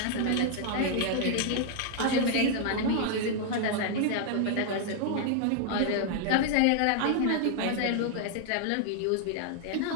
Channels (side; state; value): both; different; correlation 0.00